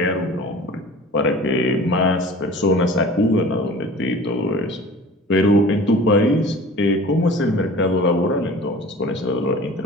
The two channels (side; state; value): both; normal; correlation 0.42